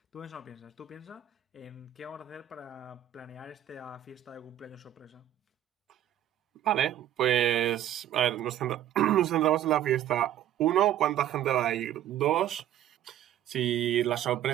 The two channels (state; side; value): quieter; left; 11.7 dB